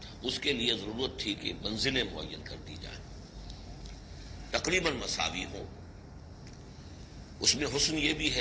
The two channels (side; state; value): both; identical; correlation 1.00